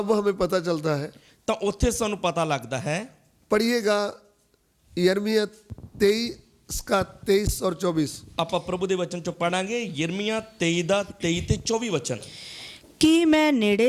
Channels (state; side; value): identical; both; correlation 1.00